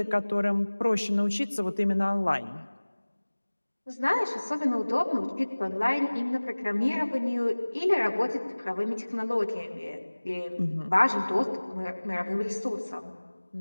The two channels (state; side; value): inverted; both; correlation -1.00